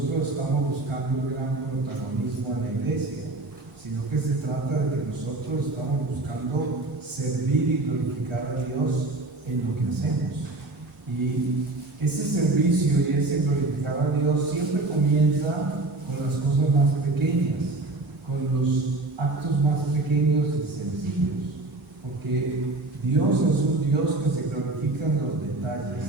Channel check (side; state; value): left; quieter; 3.1 dB